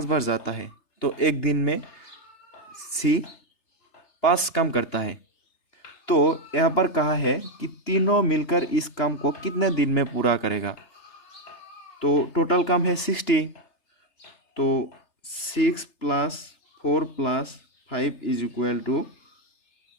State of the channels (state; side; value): late; right; 3.3 ms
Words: बार जाता है, तो एक दिन में सी 5 काम करता है। तो यहाँ पर कहा है कि तीनों मिलकर इस काम को कितने दिन में पूरा करेगा। तो टोटल काम है 60, तो 6 + 4 + 5 =